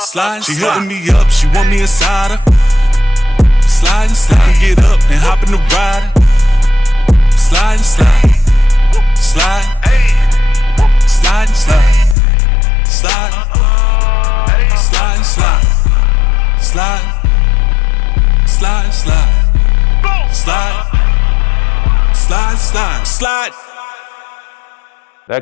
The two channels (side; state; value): right; drops out; at 12.2 s